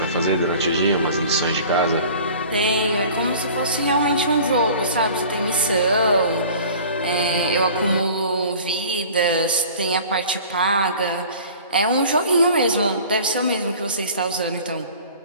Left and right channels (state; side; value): inverted; both; correlation -0.44